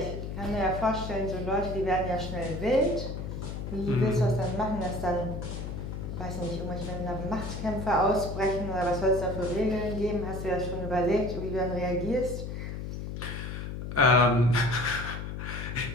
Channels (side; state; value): left; noise; hum, 6 dB below the sound